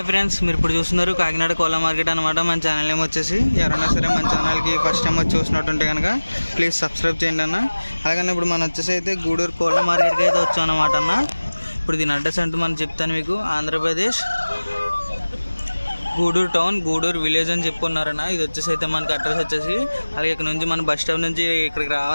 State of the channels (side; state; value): both; inverted; correlation -1.00